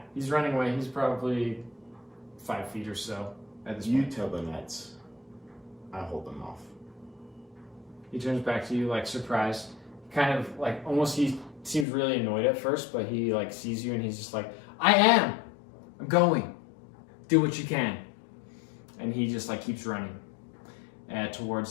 he's running away. He's probably 5 feet or so at this You point. tell the knights. I hold them off. He turns back to you surprised, kind of almost. He seems really annoyed at first, but he sees you and he's just I'm going. Do what you can. And he just keeps running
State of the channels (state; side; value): drops out; right; at 11.9 s